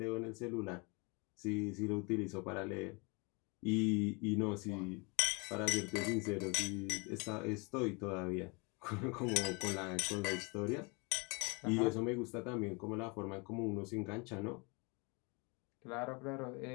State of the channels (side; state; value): right; quieter; 30.1 dB